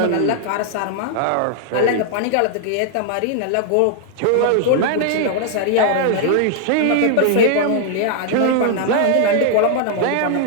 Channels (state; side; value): different; both; correlation -0.01